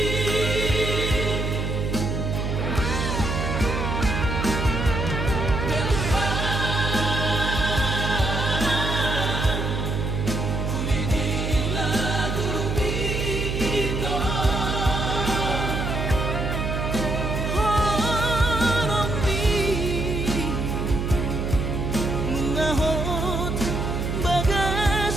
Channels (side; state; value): right; noise; hum, 2 dB below the sound